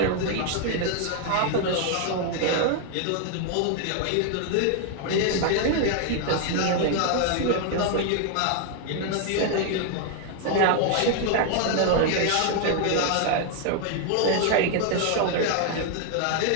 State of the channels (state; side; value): different; both; correlation 0.00